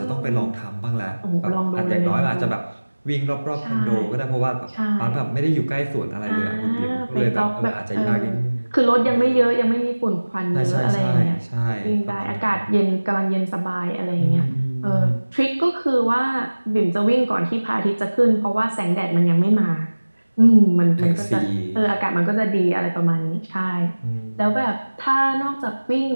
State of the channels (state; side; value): inverted; both; correlation -1.00